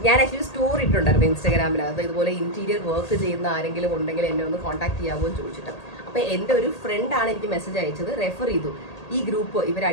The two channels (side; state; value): right; late; 1.8 ms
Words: ഞാൻ ആക്ച്വലി സ്റ്റോറി ഇട്ടുണ്ടായിരുന്നു ഇൻസ്റ്റാഗ്രാമിനകത്ത്, ഇതുപോലെ ഇന്റീരിയർ വർക്ക് ചെയ്യുന്ന ആരെങ്കിലും ഉണ്ടെങ്കിൽ എന്നെ ഒന്ന് കോൺടാക്ട് ചെയ്യാമോ എന്ന് ചോദിച്ചിട്ട്. അപ്പോൾ എൻ്റെ ഒരു ഫ്രണ്ടാണ് എനിക്ക് മെസ്സേജ് അയച്ചത്, റെഫർ ചെയ്തു ഈ ഗ്രൂപ്പ് ഇവർ